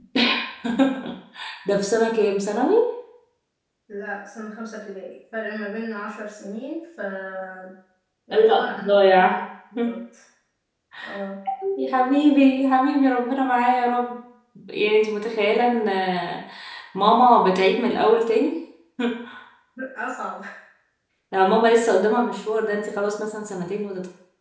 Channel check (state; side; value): identical; both; correlation 1.00